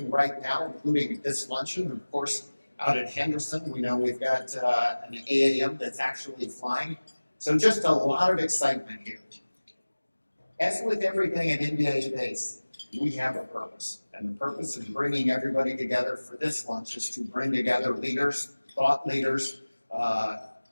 right now, including this luncheon. Of course, out at Henderson, we know we've got an AAM that's actually flying. So just a lot of excitement here. As with everything at NBAA-BACE, we have a purpose. And the purpose of bringing everybody together for this lunch is to bring together leaders, thought leaders,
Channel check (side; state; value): both; inverted; correlation -1.00